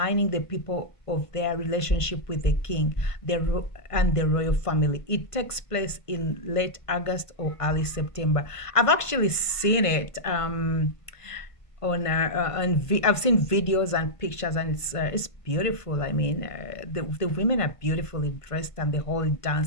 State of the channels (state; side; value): late; right; 1.5 ms